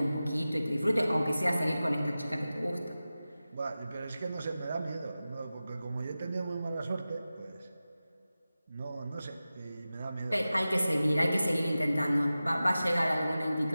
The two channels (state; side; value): inverted; both; correlation -0.95